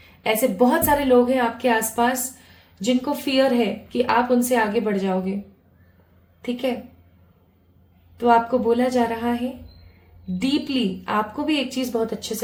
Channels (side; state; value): both; identical; correlation 1.00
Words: ऐसे बहुत सारे लोग हैं आपके आसपास जिनको फियर है कि आप उनसे आगे बढ़ जाओगे। ठीक है, तो आपको बोला जा रहा है डीपली, आपको भी एक चीज बहुत अच्छे